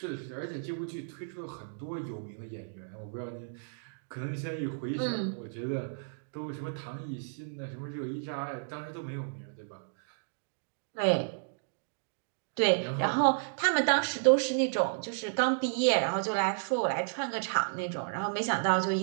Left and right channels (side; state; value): left; silent; digital silence